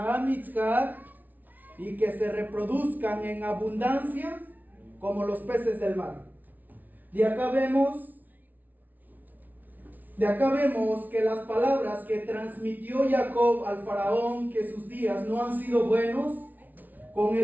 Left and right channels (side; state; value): left; late; 0.080 ms